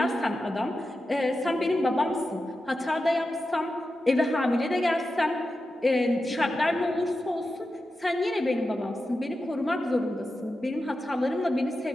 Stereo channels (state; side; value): normal; both; correlation 0.91